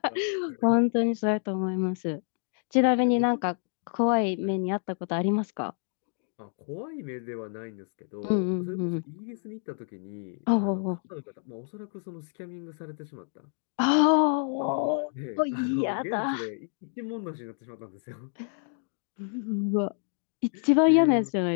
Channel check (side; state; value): right; silent; 57 dB below the other